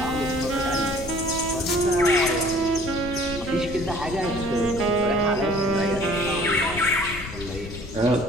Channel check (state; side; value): noise; left; rumble, 11 dB below the sound